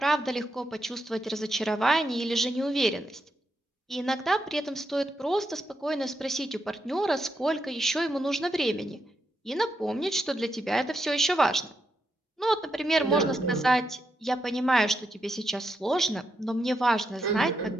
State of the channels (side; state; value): both; normal; correlation 0.83